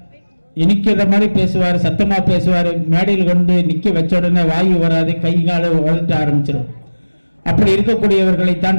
இனிக்கிற மாதிரி பேசுவார், சத்தமா பேசுவார். மேடையில் கொண்டு நிக்க வச்ச உடனே வாயு வராது, கை கால உதட்ட ஆரம்பிச்சிடும். அப்படி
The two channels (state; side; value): inverted; both; correlation -1.00